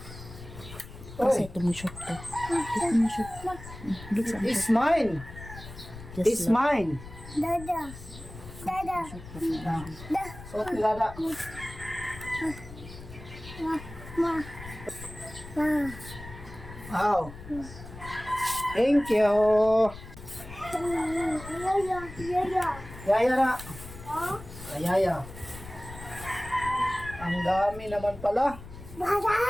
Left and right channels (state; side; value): noise; left; rumble, 14 dB below the sound